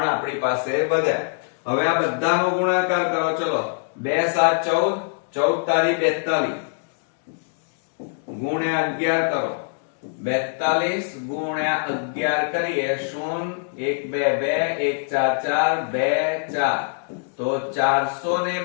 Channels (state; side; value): silent; right; digital silence